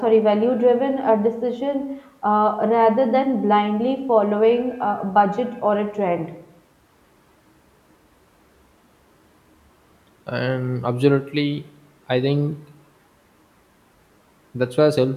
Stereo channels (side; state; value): both; identical; correlation 1.00